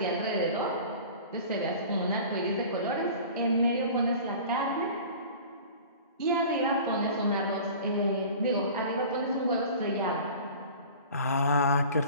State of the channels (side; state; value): both; inverted; correlation -0.41